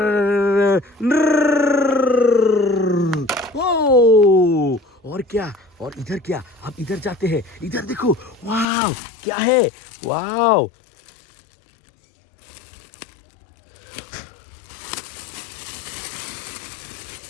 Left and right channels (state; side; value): drops out; right; at 8.7 s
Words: ओ, और क्या? और इधर क्या? अब इधर जाते हैं। इधर देखो। वाव, क्या है? वाव,